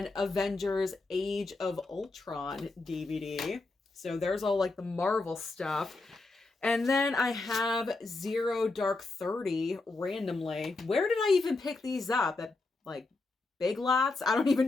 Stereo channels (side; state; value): right; quieter; 3.4 dB